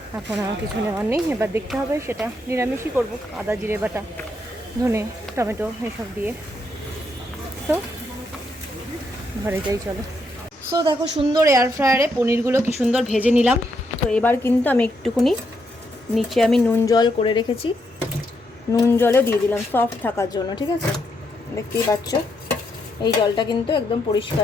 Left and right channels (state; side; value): normal; both; correlation 0.78